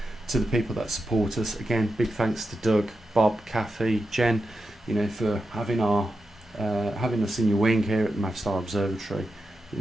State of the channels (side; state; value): both; normal; correlation 0.89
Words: to the people that support us. Again, big thanks to Doug, Bob, Kathy, Jen, you know, for having us in your wing here at the Mavstar Observatory. You